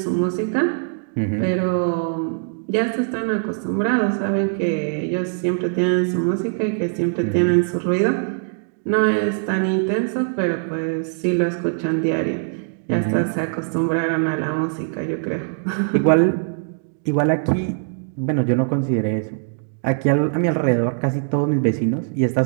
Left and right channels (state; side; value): silent; left; digital silence